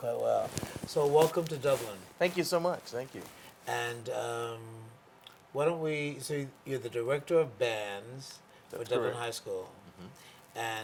well. So welcome to Dublin. Thank you so much. Thank you. And why don't we, so you're the Director of Bands for Dublin High School. Mm-hmm.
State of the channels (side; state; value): both; identical; correlation 1.00